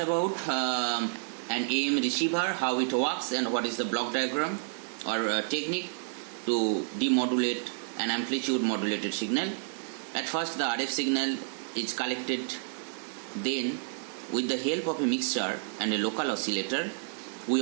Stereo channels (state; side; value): silent; left; digital silence